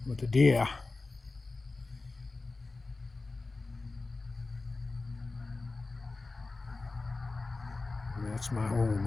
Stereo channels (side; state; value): right; quieter; 3.6 dB